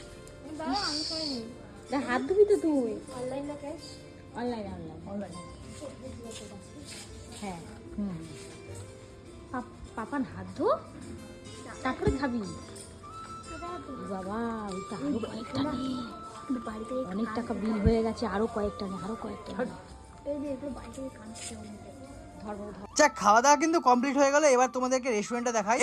হাত ধুবি তো তুই। অনলাইন না ক্যাশ? অনলাইন অনলাইন হ্যাঁ। পাপান হাত ধো, তারপরে খাবি। বাবা ওই তো আরো কয়েকটা নে। বাড়িতে অনেক টাকা বিল হয়ে গেছে, আরো কয়েকটা নে, আরো কয়েকটা নে। এই যে এগুলো বাড়িতে কাঁদছে অনেক। যাক, খাওয়া দাওয়া কিন্তু কমপ্লিট হয়ে গেল। এবার তোমাদেরকে রেস্টুরেন্টটা দেখাই।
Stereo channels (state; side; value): identical; both; correlation 1.00